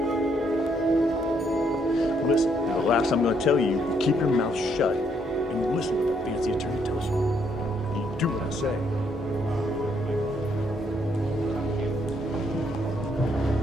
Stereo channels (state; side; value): normal; both; correlation 0.72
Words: Listen, the last I'm going to tell you, you keep your mouth shut and you listen to what the fancy attorney tells you. You do what I say.